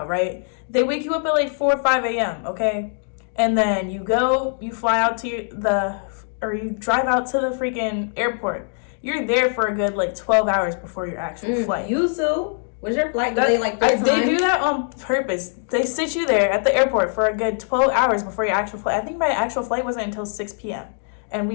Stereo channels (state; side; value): silent; right; 64 dB below the other